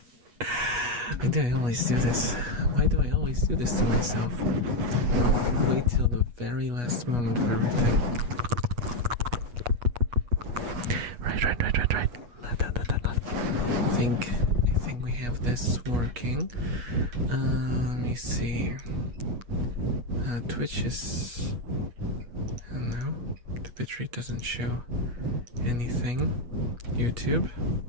Why do I always do this? Why do I always do this to myself? Wait till the very last moment for everything. Right. I think we have this working. Let me see. Twitch is... I don't know. The bitrate doesn't show anything. YouTube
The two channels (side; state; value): left; late; 8.3 ms